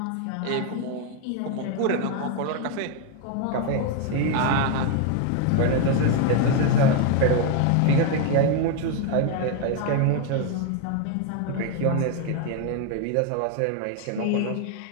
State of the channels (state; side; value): different; both; correlation 0.01